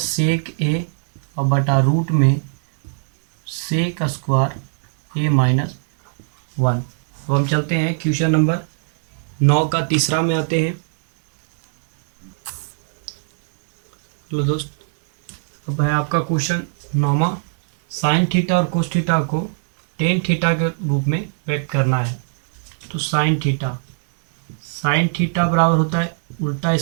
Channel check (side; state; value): left; silent; digital silence